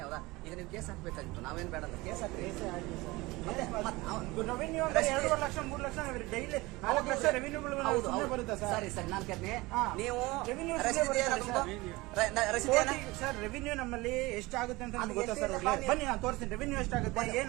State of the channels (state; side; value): quieter; left; 21.7 dB